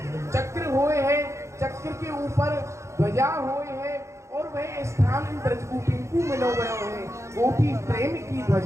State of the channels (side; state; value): left; late; 0.14 ms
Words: चक्र हुए है, चक्र के ऊपर ध्वजा हुए है, और वह स्थान इन ब्रजगोपीन को मिलो गए है, गोपी प्रेम की